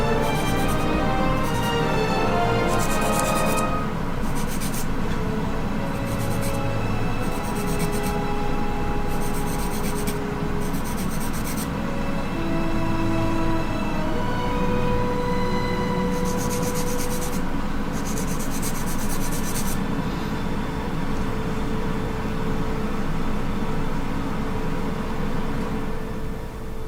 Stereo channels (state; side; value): identical; both; correlation 1.00